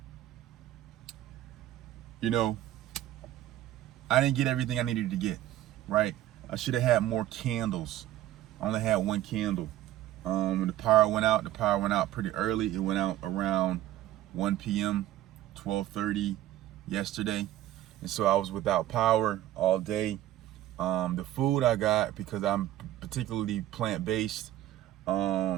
I didn't get everything I needed to get, right? I should have had more candles. I only had 1 candle. When the power went out pretty early. It went out around 1 p.m., 12:30 yesterday. And so I was without power all day. The food I got, because I'm particularly plant-based, it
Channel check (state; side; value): quieter; left; 13.7 dB